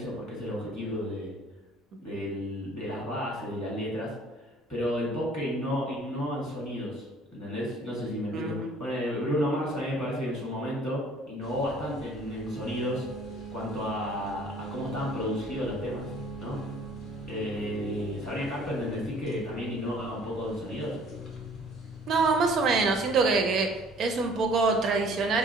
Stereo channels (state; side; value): normal; both; correlation 0.54